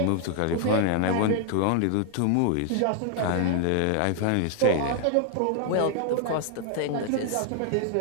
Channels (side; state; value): both; different; correlation 0.00